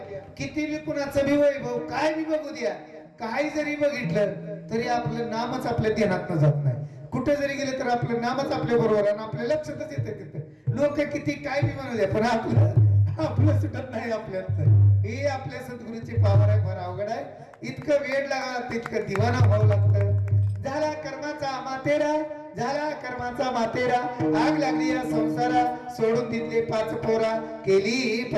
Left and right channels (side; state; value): both; identical; correlation 1.00